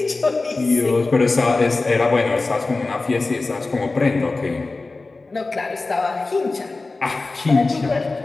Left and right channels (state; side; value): quieter; right; 3.5 dB